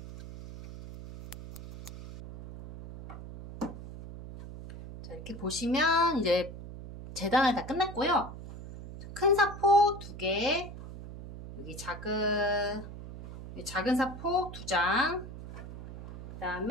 자, 이렇게 보시면 이제 재단을 다 끝냈고요. 큰 사포 2개, 여기 작은 사포 2장, 그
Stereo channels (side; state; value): right; noise; hum, 12 dB below the sound